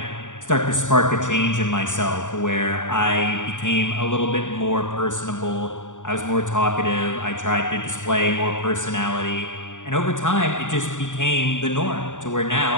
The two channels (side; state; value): right; late; 0.86 ms